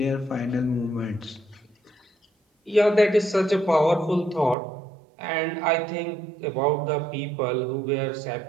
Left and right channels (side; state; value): left; drops out; at 4.5 s